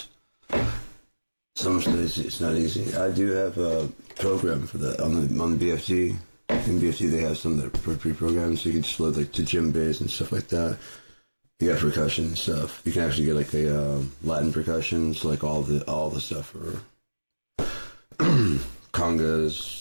Some days it's not easy. I do have a program for that on the BFT. In BFT they have some that are pre-programmed, so you can just load like to djembes and stuff like that. You got percussion and stuff. You can actually get like a Latin percussions, like all the stuff for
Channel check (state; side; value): inverted; both; correlation -1.00